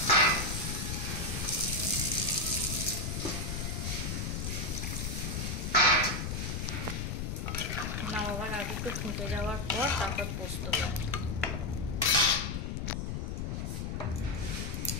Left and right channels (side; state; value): left; noise; rumble, 2 dB below the sound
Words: নামাবার আগে একটু ফুটে যাওয়ার পর তারপর পোস্ত